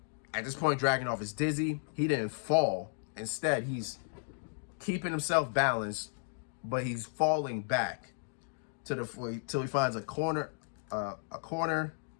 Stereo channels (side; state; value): right; silent; digital silence